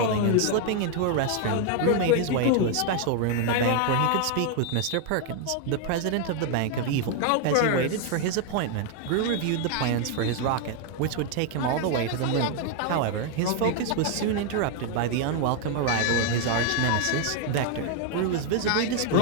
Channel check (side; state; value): both; different; correlation 0.00